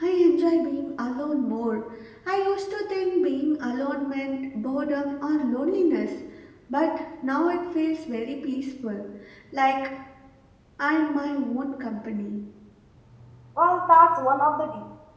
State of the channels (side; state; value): both; identical; correlation 1.00